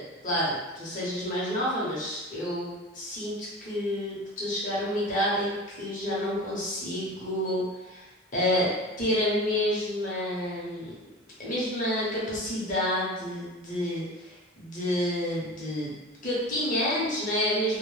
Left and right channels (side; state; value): both; normal; correlation 0.33